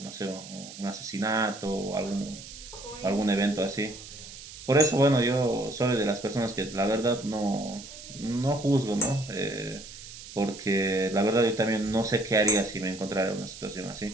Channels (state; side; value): noise; right; hiss, 14 dB below the sound